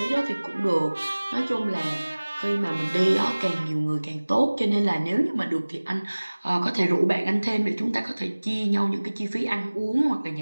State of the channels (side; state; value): both; inverted; correlation -1.00